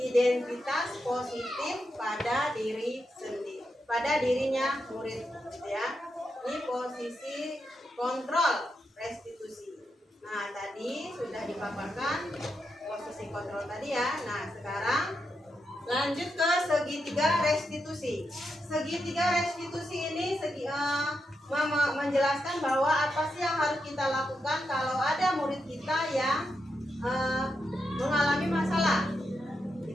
positif pada diri sendiri, pada dirinya murid, ya. Ini posisi kontrol restitusi. Nah, tadi sudah dipaparkan posisi kontrol tadi ya. Nah, sekarang lanjut ke segitiga restitusi. Segitiga restitusi ini menjelaskan bahwa apa sih yang harus kita lakukan kalau ada murid kita yang mengalami masalah.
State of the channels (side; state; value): both; normal; correlation 0.85